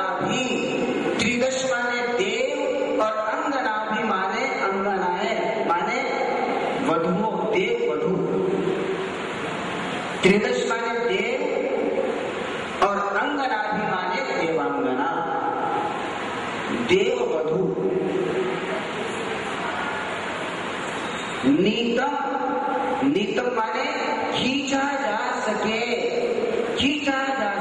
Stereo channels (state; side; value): identical; both; correlation 1.00